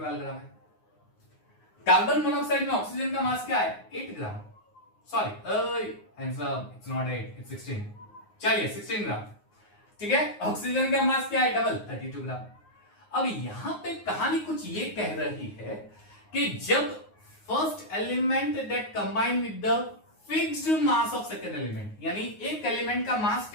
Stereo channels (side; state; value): right; late; 9.5 ms